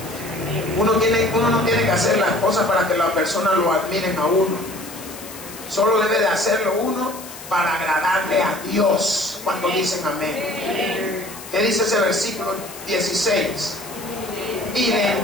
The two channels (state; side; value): noise; left; hiss, 14 dB below the sound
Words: Uno no tiene que hacer las cosas para que las personas lo admiren a uno. Solo debe de hacerlo uno para agradarle a Dios cuando dicen amén. ¿Qué dice ese versículo 16? Y le